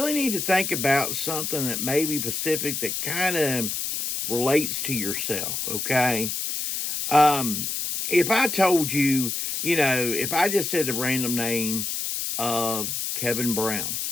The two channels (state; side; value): noise; left; hiss, 2 dB below the sound